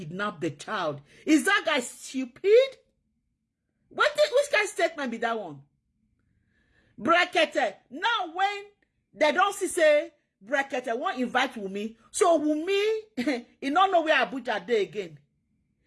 the child? Is that guy stupid? Which guy's statement be that one? Brekete. Now when they don't see say Brekete won't invite Wumi. So Wumi, he don't know where Abuja dey again.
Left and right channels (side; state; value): both; identical; correlation 1.00